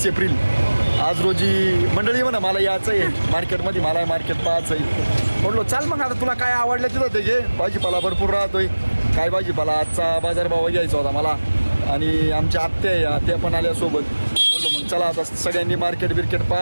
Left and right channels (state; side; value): inverted; both; correlation -1.00